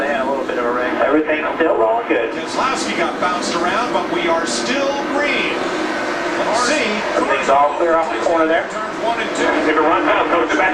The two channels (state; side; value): identical; both; correlation 1.00